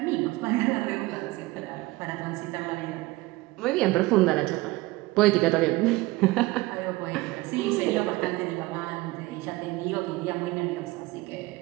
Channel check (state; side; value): quieter; left; 20.5 dB